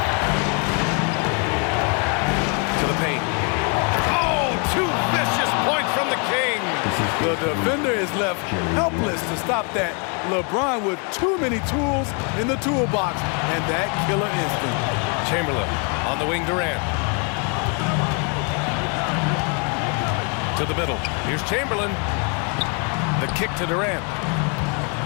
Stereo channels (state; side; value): quieter; right; 36.6 dB